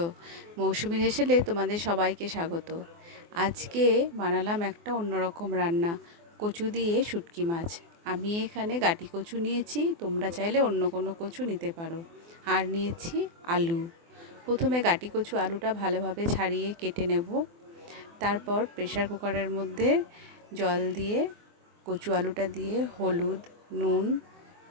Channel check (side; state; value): left; late; 24 ms